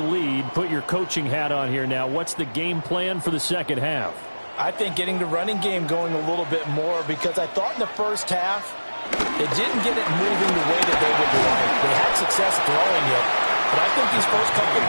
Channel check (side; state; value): both; inverted; correlation -1.00